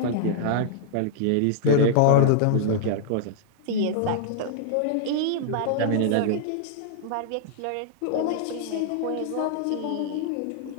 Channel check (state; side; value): different; both; correlation -0.01